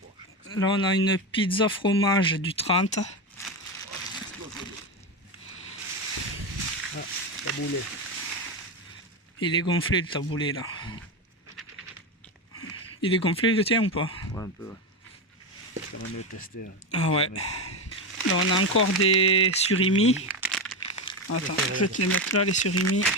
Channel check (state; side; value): normal; both; correlation 0.15